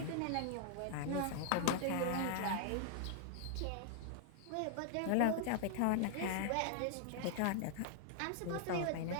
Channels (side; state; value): both; different; correlation 0.00